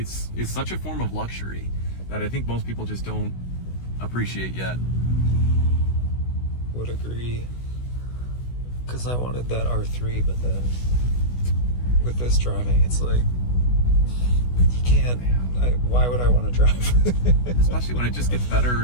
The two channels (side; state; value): right; late; 16 ms